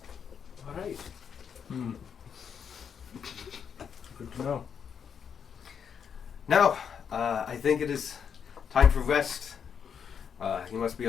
All right. Good to know. Now, I think it is time for rest. You must be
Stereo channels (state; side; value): quieter; right; 7.3 dB